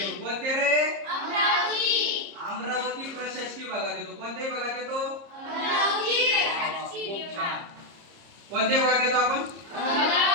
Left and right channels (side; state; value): left; late; 30 ms